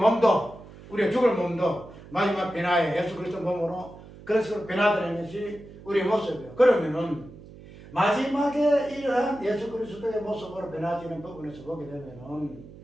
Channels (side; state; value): right; noise; hum, 18 dB below the sound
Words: 우리의 죽을 몸도 마지막 변화에 예수 그리스도 몸으로 그런 식으로 변화되는 것이 우리의 모습이에요. 그러면은 마지막에 이러한 예수 그리스도의 모습으로 변화되는 부분에서 보게 되면은